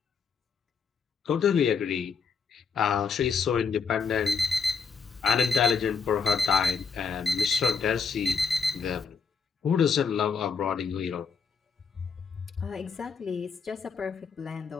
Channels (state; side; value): quieter; right; 5.5 dB